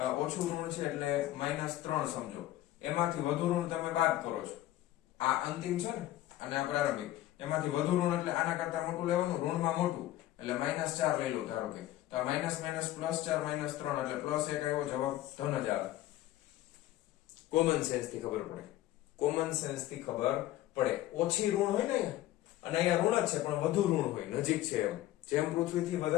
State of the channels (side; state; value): right; quieter; 14.7 dB